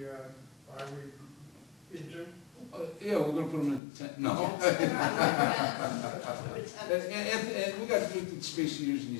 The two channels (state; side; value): drops out; right; at 3.8 s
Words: highway into? Yeah, we're gonna put them in tent, no. And we got limited space to use in